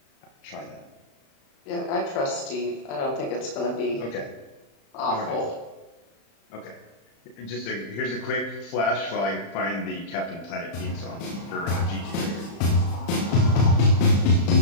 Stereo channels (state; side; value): late; right; 35 ms